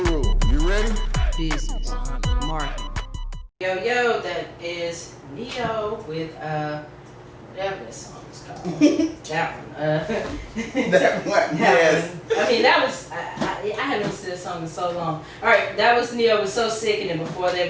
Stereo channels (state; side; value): identical; both; correlation 1.00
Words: you ready? Business, marketing. Yo, that is Neo with whatever that song is called. That one. That one, yes. I mean, that was I haven't listened to this song in so long. All right, that was Neo was So Sick, and then before that